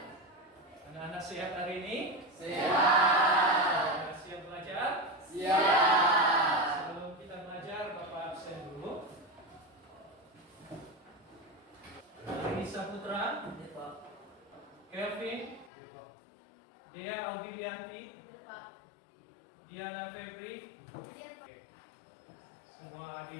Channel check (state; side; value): drops out; right; at 15.7 s